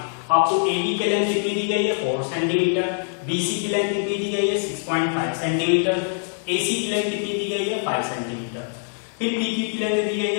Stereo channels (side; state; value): right; silent; digital silence